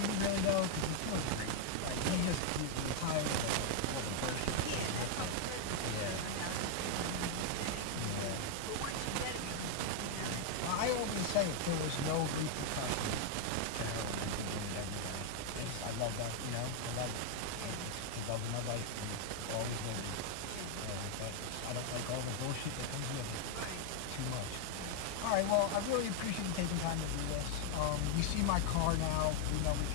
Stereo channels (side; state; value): both; different; correlation 0.00